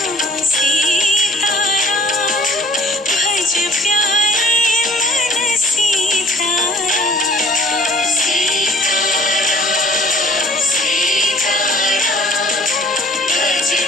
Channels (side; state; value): both; normal; correlation 0.53